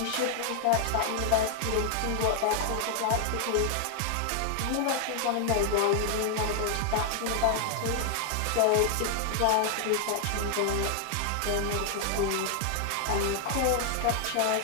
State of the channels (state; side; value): different; both; correlation 0.00